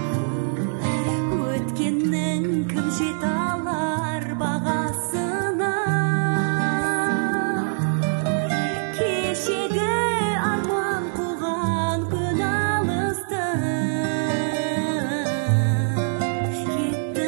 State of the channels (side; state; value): left; silent; digital silence